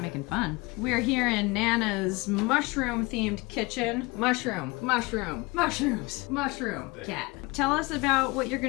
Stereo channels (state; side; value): quieter; right; 24.9 dB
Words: making fun. We're here in Nana's mushroom-themed kitchen. Mushroom. Cat. Tell us about what you're